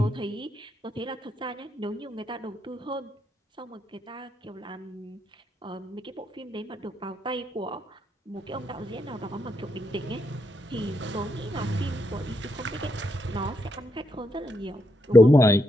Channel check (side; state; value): both; normal; correlation 0.80